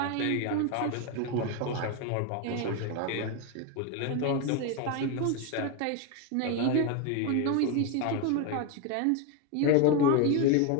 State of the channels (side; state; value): both; different; correlation 0.02